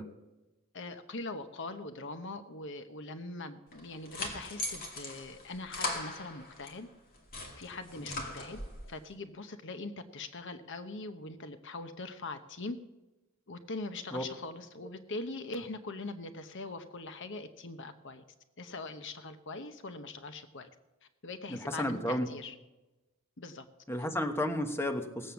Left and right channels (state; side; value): normal; both; correlation 0.38